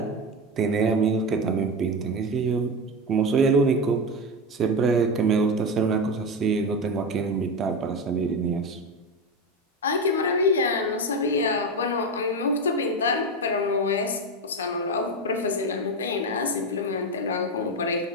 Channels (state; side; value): normal; both; correlation 0.16